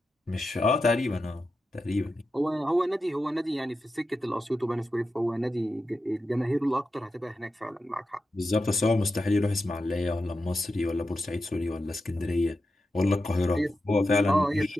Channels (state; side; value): normal; both; correlation 0.90